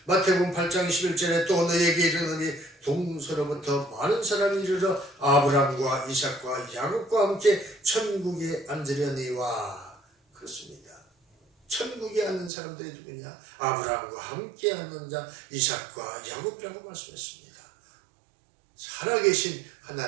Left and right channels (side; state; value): left; drops out; at 12.5 s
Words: 마태복음 8장 21절에 또 너에게 이르노니 동서로부터 많은 사람이 이르러 아브라함과 이삭과 야곱과 함께 천국에 앉으려니와. 그렇습니다. 천국에 앉는 사람들이 누구냐? 아브라함과 함께 앉는 자 이삭과 야곱이라고 말씀했습니다. 살아계신